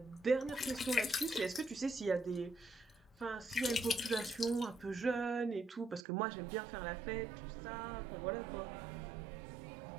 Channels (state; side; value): drops out; left; at 6.0 s